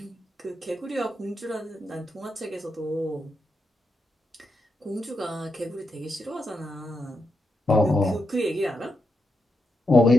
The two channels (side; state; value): both; normal; correlation 0.84